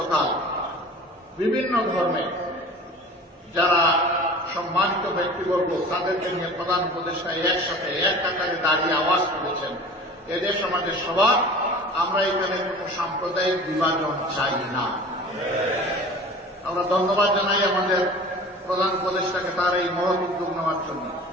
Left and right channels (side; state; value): both; normal; correlation 0.41